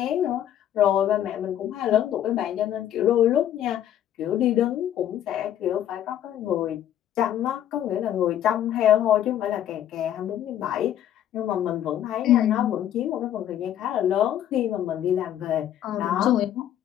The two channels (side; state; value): right; quieter; 11.1 dB